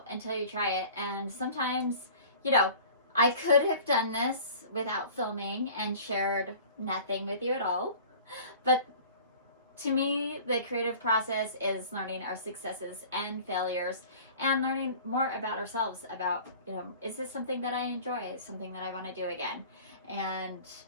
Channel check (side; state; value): both; inverted; correlation -0.44